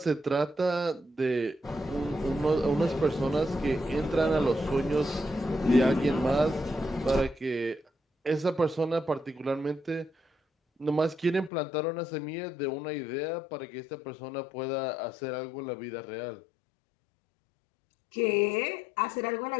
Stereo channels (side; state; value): right; drops out; at 11.5 s